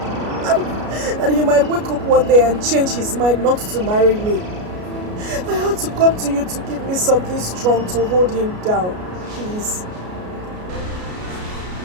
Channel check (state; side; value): late; left; 33 ms